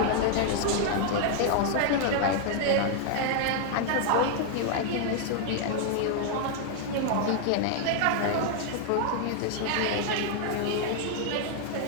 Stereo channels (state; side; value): different; both; correlation 0.00